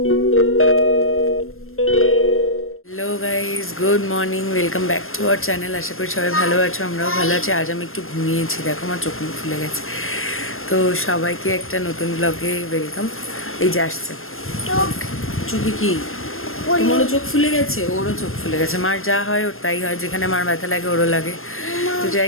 guys, good morning, welcome back to our channel. আশা করি সবাই ভালো আছো, আমরাও ভালো আছি। আজ আমি একটু ঘুমিয়েছি, দেখো আমার চোখ মুখ ফুলে গেছে। তো সবাইকে একটা নতুন ব্লগে ওয়েলকাম। এই যে আসছে চোখে কি তোমারও চোখ ফুলে গেছে, ওরও চোখ ফুলে গেছে। মার যা হয় ওর তাই হয়, যেখানে মার ব্যথা লাগে ওরও লাগে। তো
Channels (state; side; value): late; right; 0.61 ms